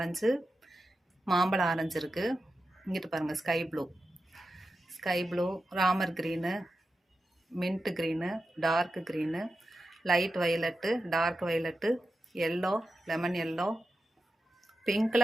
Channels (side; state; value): both; normal; correlation 0.91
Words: மாம்பழ ஆரஞ்சு இருக்குது. இங்கிட்டு பாருங்கள் ஸ்கை ப்ளூ, ராமர் green, mint green, dark green, light violet, dark violet, yellow, lemon yellow,